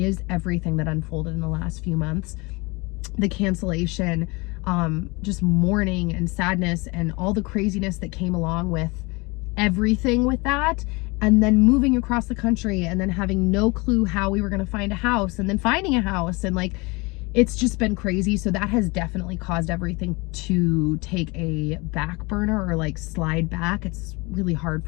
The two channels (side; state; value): right; quieter; 26.1 dB